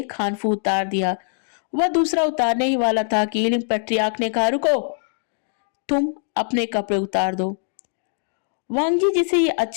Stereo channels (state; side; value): silent; right; digital silence